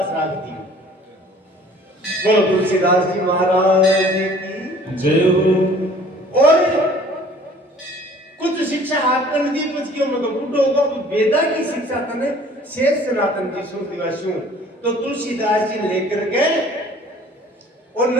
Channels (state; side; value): normal; both; correlation 0.52